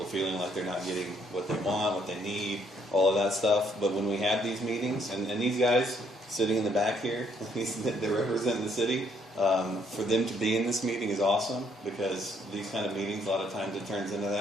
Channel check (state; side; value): normal; both; correlation 0.68